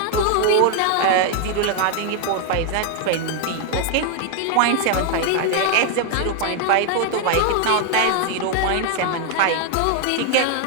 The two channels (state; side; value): different; both; correlation 0.01